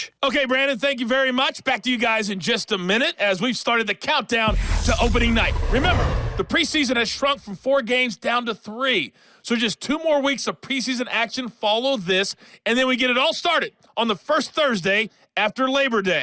Okay, Brandon, thank you very much. Back to you guys in just a minute as we've started the countdown to opening night. Remember, the preseason has shrunk from 4 games down to 3. So just 2 more weeks of preseason action follow this, and then we get it all started on the first Thursday after Labor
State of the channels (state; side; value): identical; both; correlation 1.00